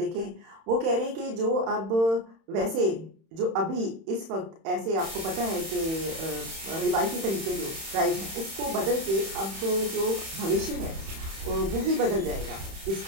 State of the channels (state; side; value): late; left; 31 ms